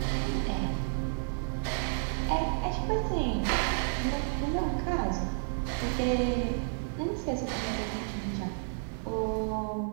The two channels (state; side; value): silent; left; 57 dB below the other